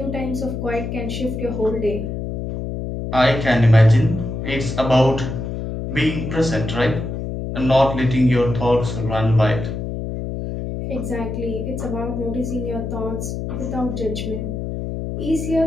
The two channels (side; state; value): left; noise; hum, 5 dB below the sound